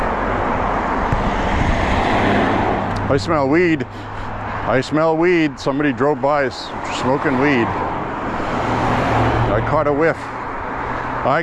I smell weed. I smell weed. Somebody drove by smoking weed. I caught a whiff.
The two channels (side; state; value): both; identical; correlation 1.00